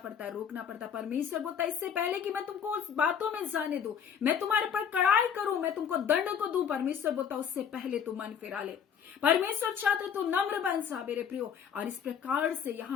है, रोकना पड़ता है। परमेश्वर बोलता है, इससे पहले कि मैं तुमको उस बातों में जाने दूं, मैं तुम्हारे पर कड़ाई करूं, मैं तुमको दंड को दूं, परमेश्वर बोलता है उससे पहले तू मन फिरा ले। परमेश्वर चाहते तो नम्र बन जा मेरे प्रियो। और इस प्रकार से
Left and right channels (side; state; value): right; quieter; 7.8 dB